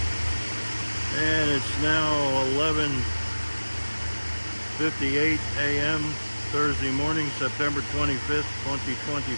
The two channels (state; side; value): inverted; both; correlation -1.00